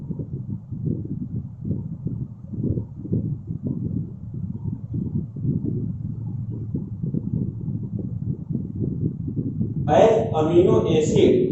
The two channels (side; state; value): both; identical; correlation 1.00